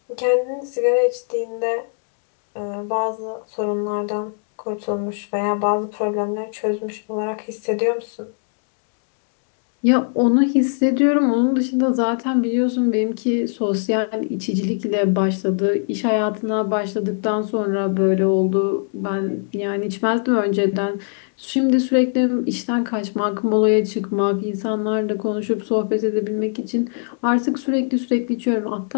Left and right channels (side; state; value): right; silent; digital silence